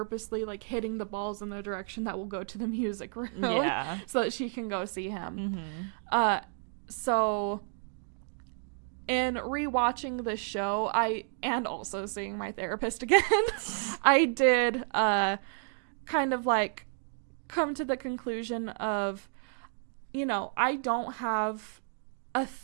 like hitting the balls in the direction that will go to the music room, so that she can go see him. So in rewatching the show, and also seeing my therapist again, I did kind of like come to the conclusion of, you know, I don't have a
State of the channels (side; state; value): left; silent; 57 dB below the other